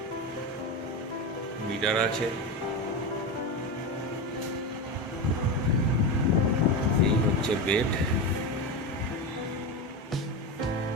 মিটার আছে। এই হচ্ছে বেড।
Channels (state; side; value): normal; both; correlation 0.18